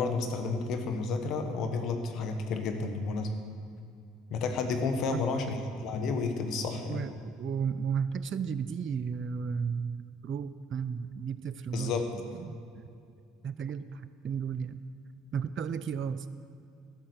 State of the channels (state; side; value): normal; both; correlation 0.61